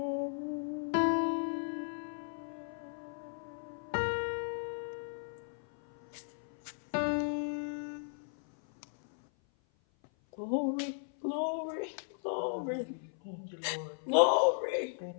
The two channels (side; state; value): right; silent; 54 dB below the other